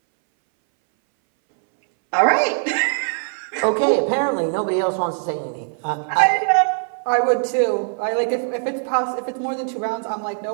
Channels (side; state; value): left; silent; 62 dB below the other